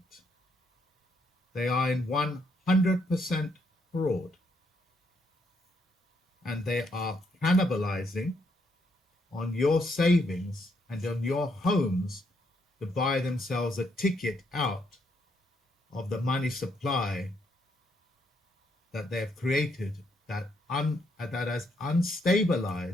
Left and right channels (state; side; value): normal; both; correlation 0.74